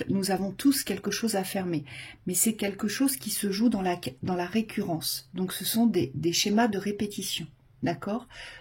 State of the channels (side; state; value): both; identical; correlation 1.00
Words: nous avons tous quelque chose à fermer. Mais c'est quelque chose qui se joue dans la récurrence. Donc ce sont des schémas de répétition. D'accord?